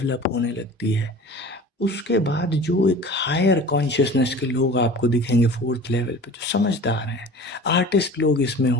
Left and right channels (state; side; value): normal; both; correlation 0.40